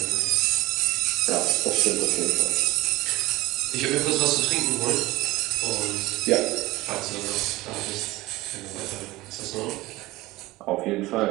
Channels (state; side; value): quieter; left; 19.1 dB